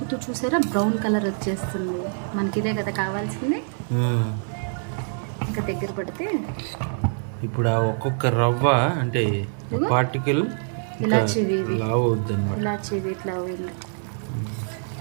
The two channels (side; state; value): left; silent; digital silence